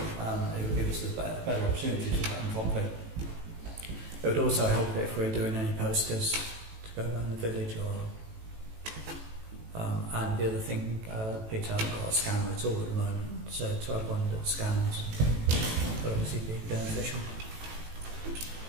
would give us a better opportunity to put them properly. It would also help if we're doing any posters to go around the village and the other thing, Peter hasn't got a scanner at all at the moment, so to have one that scans would obviously be beneficial.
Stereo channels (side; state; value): left; late; 18 ms